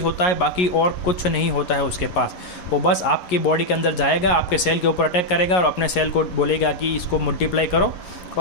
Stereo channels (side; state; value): right; late; 11 ms